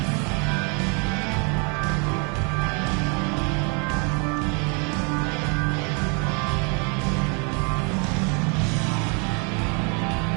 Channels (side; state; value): left; quieter; 34.5 dB